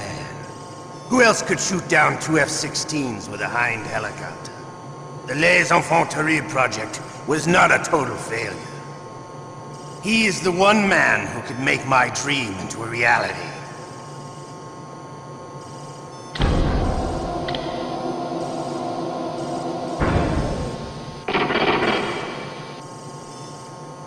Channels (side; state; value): both; identical; correlation 1.00